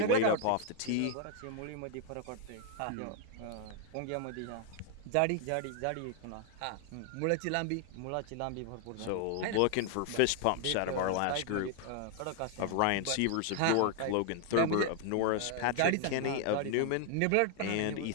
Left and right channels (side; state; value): both; different; correlation 0.00